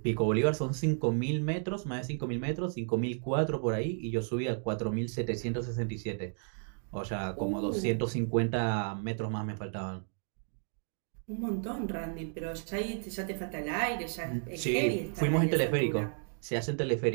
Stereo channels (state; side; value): silent; left; 56 dB below the other